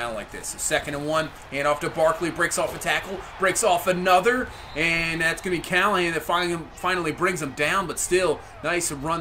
like this. So 2nd and 1, hand off to Barkley, breaks off a tackle, breaks off another, and that's going to be Callahan that finally brings him down. But still, nice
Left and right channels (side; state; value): both; identical; correlation 1.00